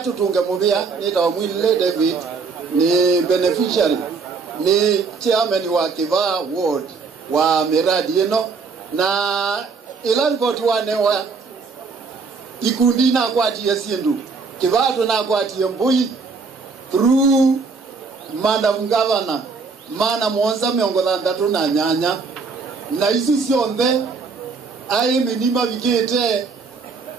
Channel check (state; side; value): quieter; left; 4.7 dB